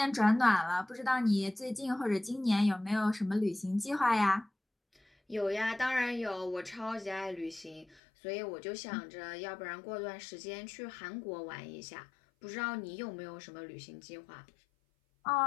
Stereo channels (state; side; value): drops out; right; at 8.0 s